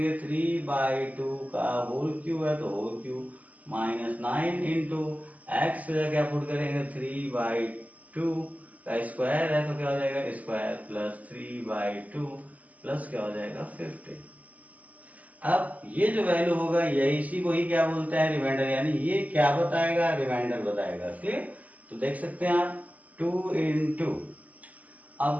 3/2 का होल क्यूब है तो whole cube minus 9 into x से क्या पुट करेंगे? 3/2 का स्क्वायर है तो क्या हो जाएगा स्क्वायर प्लस 3/2 प्लस क्या हो जाएगा 50। अब ये जो वैल्यू होगा यही इसी को ही क्या बोलते हैं रिमाइंडर, यानी ये क्या बताएगा रिमाइंडर बताएगा। क्लियर? तो देख सकते हैं आप 2 इंटू,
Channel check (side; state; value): left; late; 0.075 ms